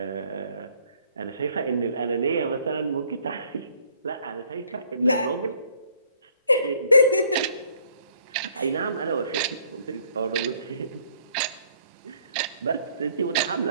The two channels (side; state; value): both; inverted; correlation -0.62